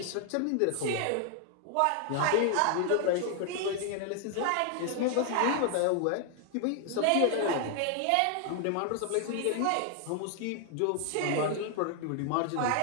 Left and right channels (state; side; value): different; both; correlation 0.00